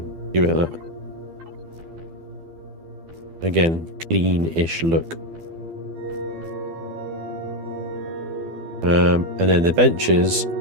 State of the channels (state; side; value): late; left; 12 ms